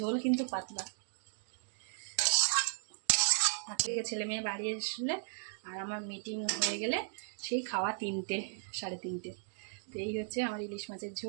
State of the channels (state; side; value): silent; left; digital silence